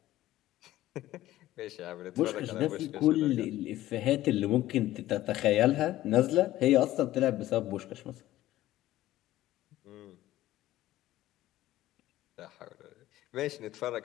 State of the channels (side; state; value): right; quieter; 15.0 dB